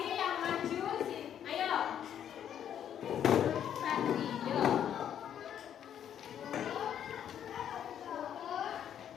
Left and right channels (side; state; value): right; quieter; 9.6 dB